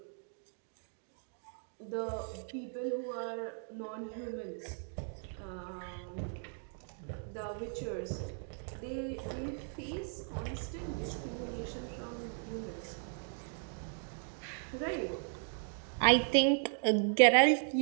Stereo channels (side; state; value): left; silent; 53 dB below the other